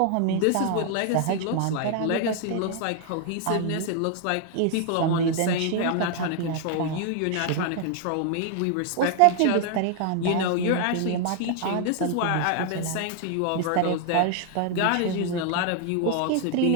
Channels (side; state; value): both; different; correlation 0.00